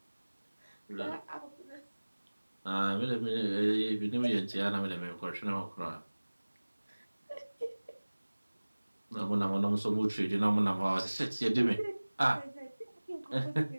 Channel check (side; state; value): both; inverted; correlation -1.00